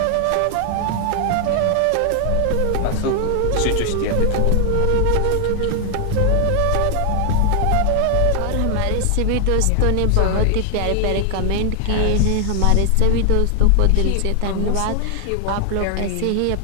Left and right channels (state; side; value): different; both; correlation 0.00